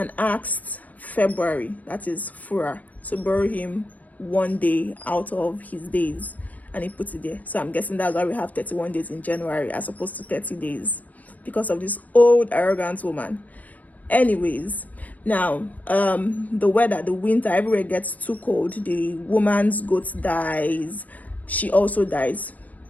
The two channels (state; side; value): late; right; 0.075 ms